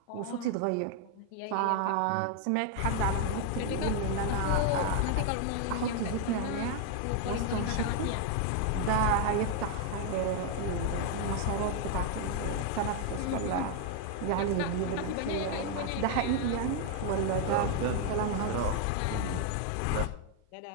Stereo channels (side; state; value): both; different; correlation 0.00